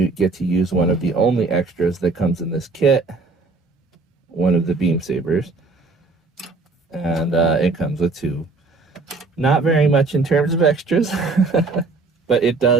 get to use one of the only extras that comes in this kit, one of the beam sabers. And it comes with two. Not very much in terms of extras, but that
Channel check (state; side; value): quieter; left; 3.7 dB